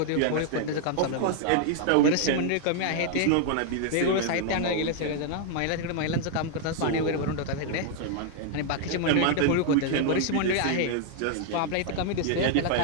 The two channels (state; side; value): different; both; correlation 0.00